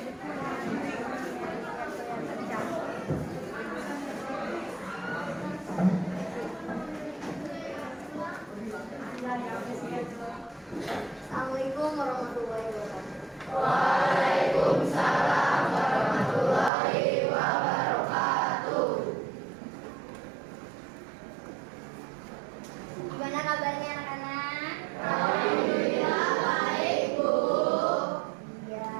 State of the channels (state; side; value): drops out; left; at 16.7 s